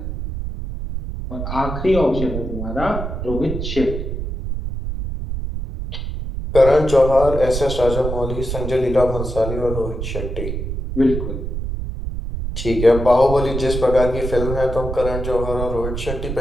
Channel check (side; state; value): right; noise; rumble, 5 dB below the sound